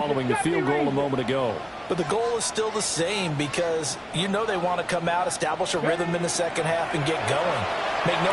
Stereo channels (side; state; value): both; identical; correlation 1.00